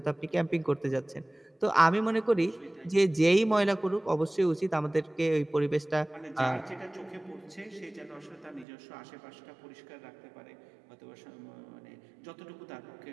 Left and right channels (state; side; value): drops out; left; at 8.7 s